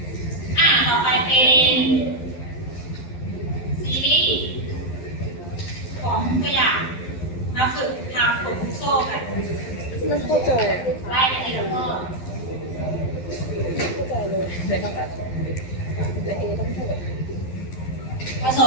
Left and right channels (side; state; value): right; late; 12 ms